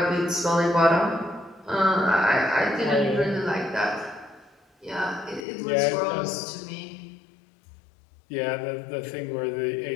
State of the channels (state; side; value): drops out; right; at 5.5 s